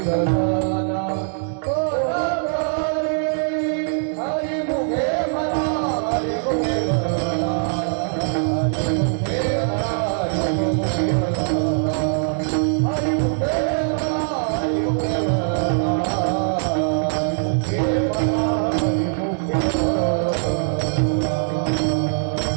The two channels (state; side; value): silent; left; digital silence